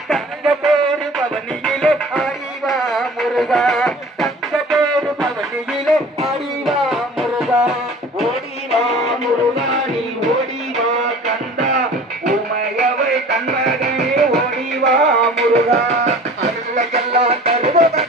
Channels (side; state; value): both; normal; correlation 0.44